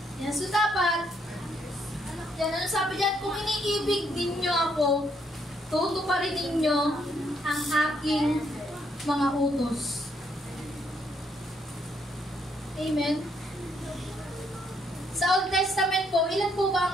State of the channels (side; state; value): both; normal; correlation 0.72